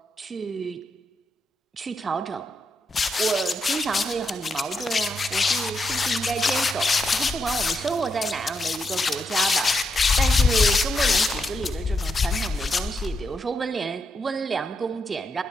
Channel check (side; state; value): both; normal; correlation 0.82